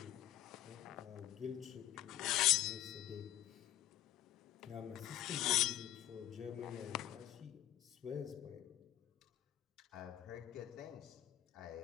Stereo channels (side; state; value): right; quieter; 12.7 dB